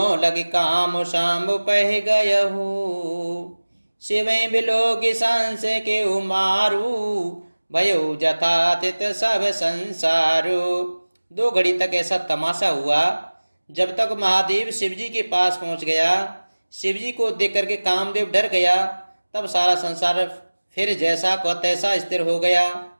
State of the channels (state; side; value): inverted; both; correlation -1.00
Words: लग काम शाम पह गयहु। शिवें बिलोक सांस के उमारू, भयो जथातित सब संसारो। 2 घड़ी तक ऐसा तमाशा हुआ। जब तक महादेव शिवजी के पास पहुंच गया, शिवजी को देख करके कामदेव डर गया, तब सारा संसार फिर जैसा को तैसा स्थिर हो गया।